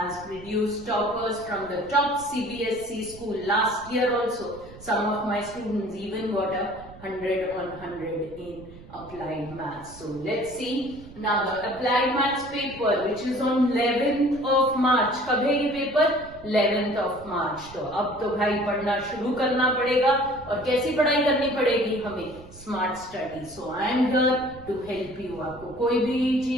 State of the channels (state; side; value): noise; right; rumble, 19 dB below the sound